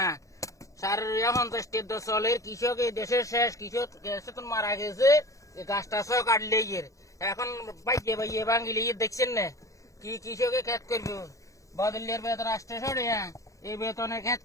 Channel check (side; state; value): right; late; 0.16 ms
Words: 50 টাকা চলে কৃষক এই দেশের শেষ কৃষক তো মারা গেছে গাছটা সহ কাটলে এর এখন বাইয়ে বাইয়ে ভাঙিলে দেখছেন না কি কৃষকে খেত করবো বদলের বেতন আসতে সরে এই বেতনে খেত